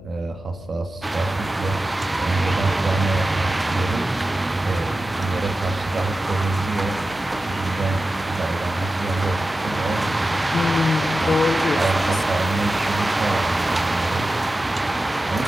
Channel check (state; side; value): noise; left; hum, 19 dB below the sound